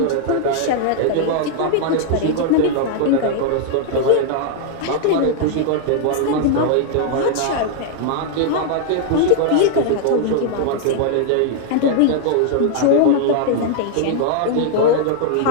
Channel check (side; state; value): both; different; correlation -0.01